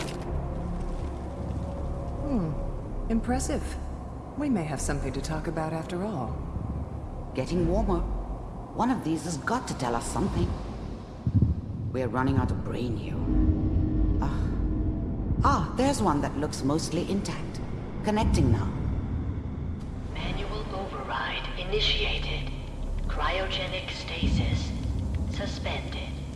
Impressive. We may have something to talk about after all. Getting warmer. One of these has got to tell us something. We're running out of brain here. There's one that looks mostly intact. Connecting now. Manual override initiated. Cryogenic stasis suspended.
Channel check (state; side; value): identical; both; correlation 1.00